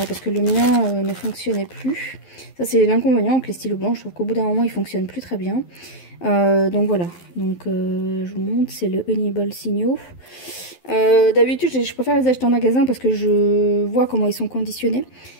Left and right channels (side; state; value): right; late; 11 ms